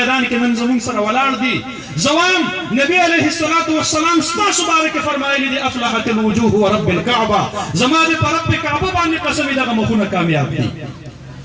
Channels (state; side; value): identical; both; correlation 1.00